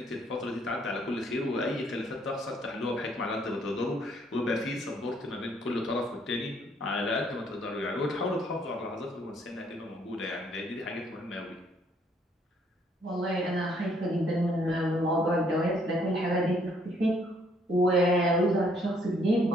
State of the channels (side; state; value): both; normal; correlation 0.66